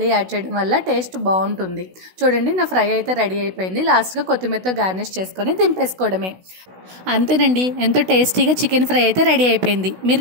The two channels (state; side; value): late; left; 16 ms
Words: యాడ్ చేయడం వల్ల టేస్ట్ బాగుంటుంది. చూడండి, నా ఫ్రై అయితే రెడీ అయిపోయింది. లాస్ట్గా కొత్తిమీరతో గార్నిష్ చేసుకొని దింపేసుకోవడమే. అంతేనండి, ఎంతో టేస్టీగా చికెన్ ఫ్రై అయితే రెడీ అయిపోయింది.